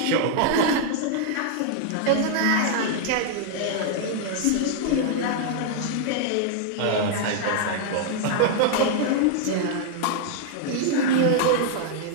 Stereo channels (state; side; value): different; both; correlation -0.01